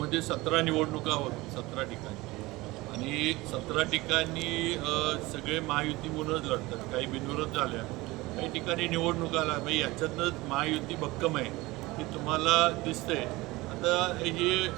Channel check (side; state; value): left; quieter; 20.8 dB